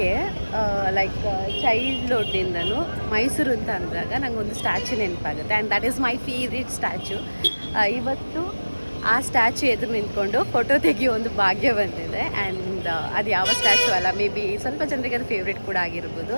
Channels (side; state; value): both; inverted; correlation -1.00